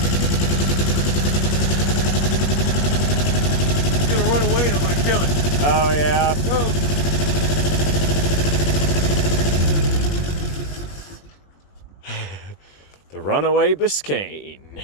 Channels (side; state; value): right; late; 21 ms